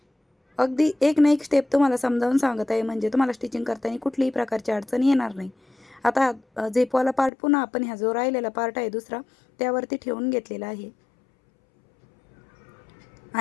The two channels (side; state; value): right; drops out; at 7.3 s